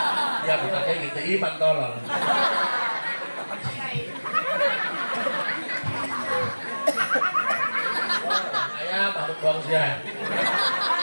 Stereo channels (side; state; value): both; inverted; correlation -1.00